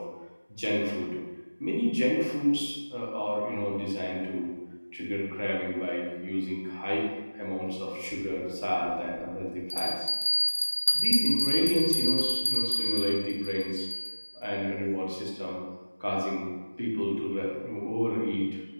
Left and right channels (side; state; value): both; inverted; correlation -1.00